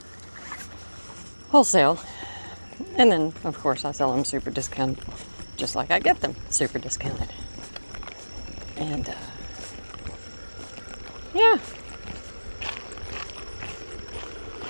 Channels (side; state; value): both; inverted; correlation -1.00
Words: wholesale. And then, of course, I sell them super discounted, just like I get them super discounted. And, yeah.